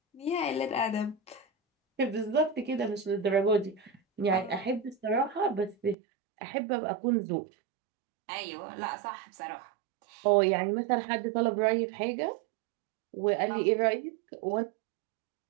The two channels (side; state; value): left; drops out; at 6.0 s